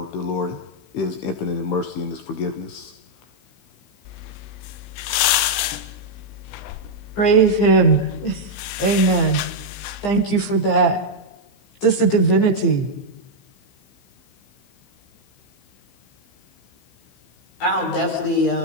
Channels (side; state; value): right; late; 16 ms